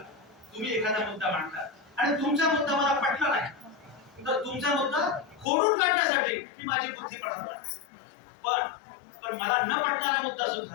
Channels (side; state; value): right; drops out; at 5.5 s